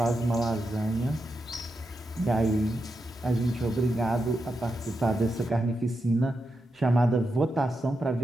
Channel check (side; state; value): both; normal; correlation 0.87